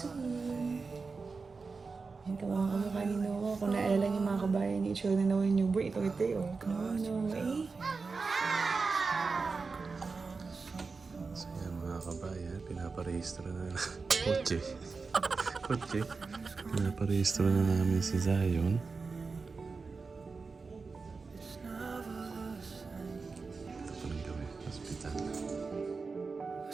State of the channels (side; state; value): left; quieter; 4.5 dB